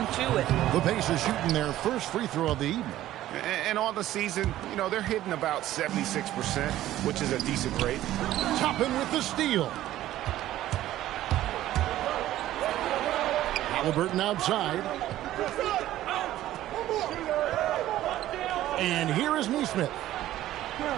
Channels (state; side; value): quieter; left; 14.0 dB